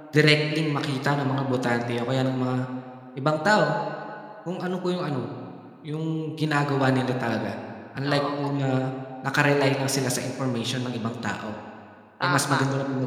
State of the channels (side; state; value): both; identical; correlation 1.00